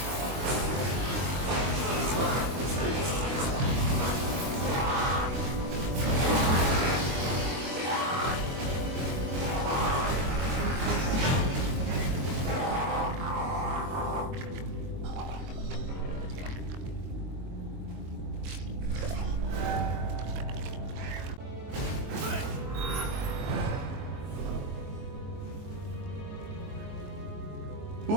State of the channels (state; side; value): late; left; 23 ms